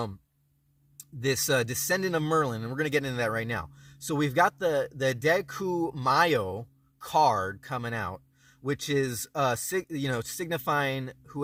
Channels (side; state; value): both; identical; correlation 1.00